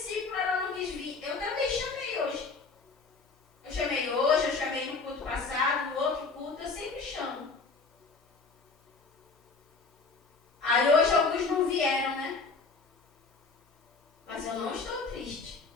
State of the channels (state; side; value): quieter; right; 4.3 dB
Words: ela não quis vir. Eu também chamei hoje. Eu chamei no culto passado, no outro culto, eu sempre chamo. Aí hoje alguns não vieram, né? Mas eu não estou triste.